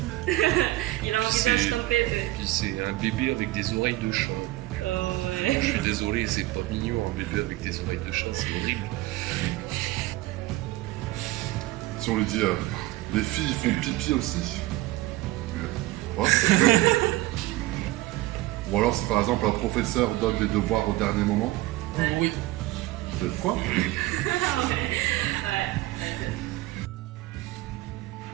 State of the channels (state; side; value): quieter; left; 18.3 dB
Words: Il a un visage comme bébé. Puis c'est un bébé avec des oreilles de chat. Oh ouais. Je suis désolé, c'est pas mignon, un bébé avec des oreilles de chat, c'est horrible. Si on lui dit, les filles font pipi aussi. What? Ou alors si par exemple un professeur donne des devoirs au dernier moment. Oui. Vous êtes quoi? Ouais.